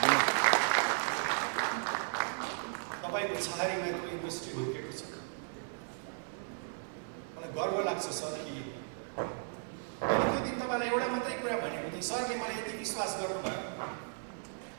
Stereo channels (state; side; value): silent; left; 54 dB below the other